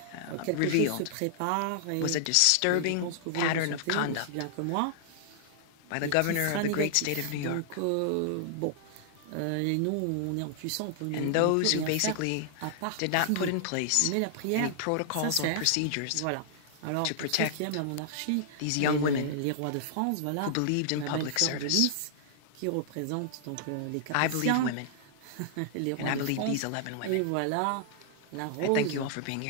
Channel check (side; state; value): both; different; correlation -0.01